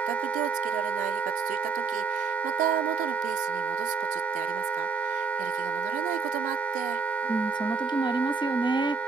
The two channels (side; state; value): left; quieter; 5.0 dB